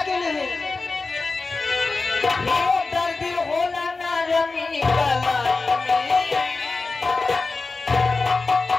है? दर्द होला ना रमी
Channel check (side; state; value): right; quieter; 3.8 dB